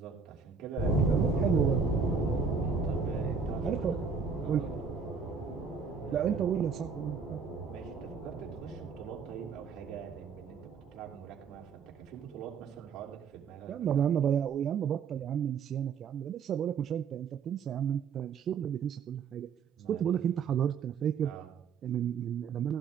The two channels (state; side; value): quieter; left; 5.9 dB